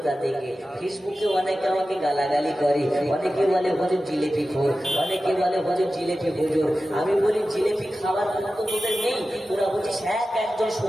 থেকে। ফেসবুকে অনেকে আমাকে গালাগালি করে, অনেকে বলে হুজুর জিলেপি খোর, অনেকে বলে হুজুর জিলেপি হুজুর। আমি বলি জিলেপি খাবার কোনো তো তোদের নেই, তোরা বলছিস একজন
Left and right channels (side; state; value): both; normal; correlation 0.94